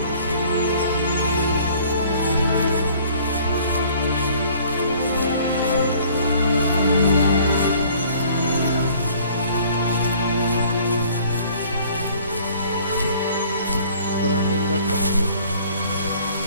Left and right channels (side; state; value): both; inverted; correlation -0.54